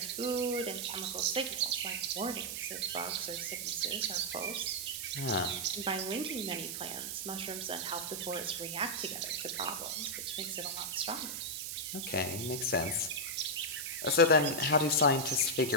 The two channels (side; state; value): right; noise; hiss, 5 dB below the sound